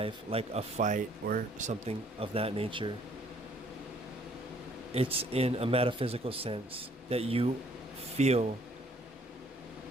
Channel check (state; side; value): normal; both; correlation 0.62